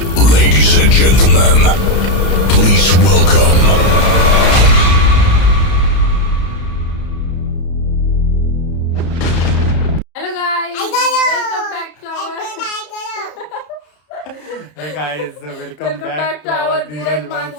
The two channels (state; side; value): late; right; 33 ms